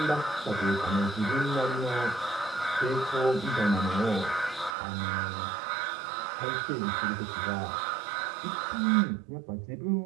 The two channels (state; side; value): drops out; left; at 4.8 s